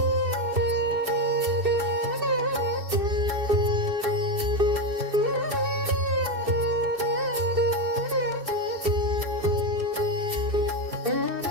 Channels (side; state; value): left; late; 2.6 ms